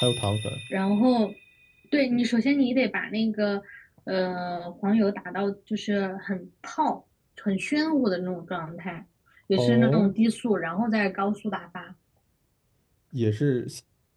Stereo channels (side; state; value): both; identical; correlation 1.00